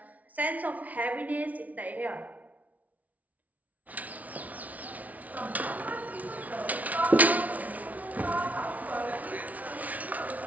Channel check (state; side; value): late; left; 0.072 ms